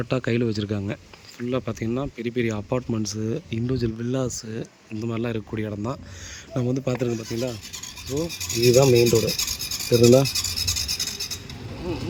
கையில் வச்சுருக்காங்க. ஃபுல்லாக பார்த்திங்கன்னா பெரிய பெரிய அப்பார்ட்மெண்ட்ஸு, இண்டிவிஜுவல் வில்லாஸு இந்த மாதிரிலாம் இருக்கக்கூடிய இடம் தான் நம்ம வந்து பார்த்துருக்கோம். பார்த்திங்களா, ஸோ இதுதான் மெயின் ரோடு தெரியுங்களா.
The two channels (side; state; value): both; identical; correlation 1.00